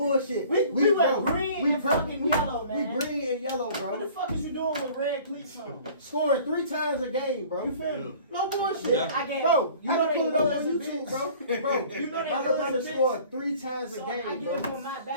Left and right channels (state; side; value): inverted; both; correlation -0.49